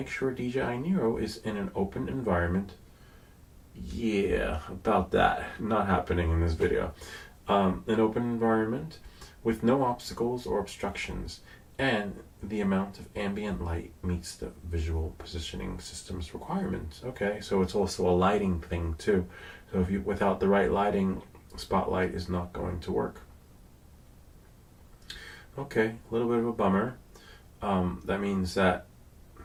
sure DJI NEO is in an open environment. Yeah, about that. Not happening in this video. An open environment with no obstacles or obstructions, and the amount of ambient light meets the visual positioning system's requirements. Okay, so it's also a lighting thing too. So if you, without the right lighting, spotlight is not going to work. Okay, a little bit of a bummer. That means that,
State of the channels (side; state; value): both; identical; correlation 1.00